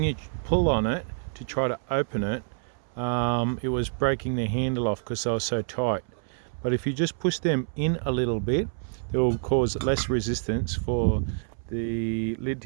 you pull on it to try to open it, it was breaking the handle off because they were so tight. But if you just push them in a little bit, it will cause less resistance for the lid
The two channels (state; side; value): silent; left; 60 dB below the other